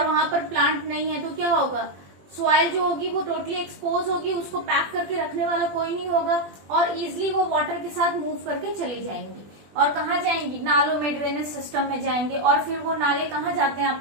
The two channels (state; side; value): late; left; 20 ms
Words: वहां पर प्लांट नहीं है, तो क्या होगा, सॉइल जो होगी वो टोटली एक्सपोज होगी, उसको पैक करके रखने वाला कोई नहीं होगा और इजिली वो वाटर के साथ मूव करके चली जाएंगी। और कहाँ जाएंगी, नालों में, ड्रेनेज सिस्टम में जाएंगे। और फिर वो नाले कहाँ जाते हैं,